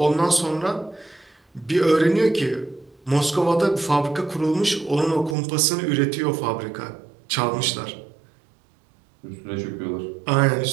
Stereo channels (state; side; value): drops out; left; at 5.4 s